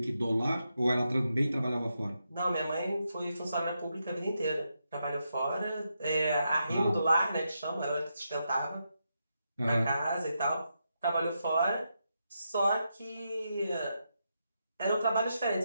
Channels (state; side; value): inverted; both; correlation -0.84